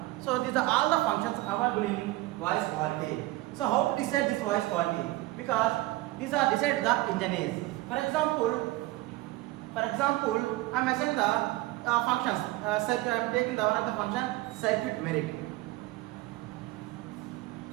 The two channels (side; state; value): left; quieter; 18.9 dB